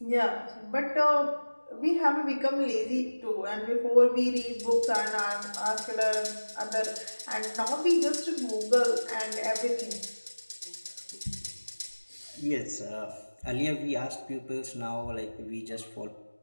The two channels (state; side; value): inverted; both; correlation -1.00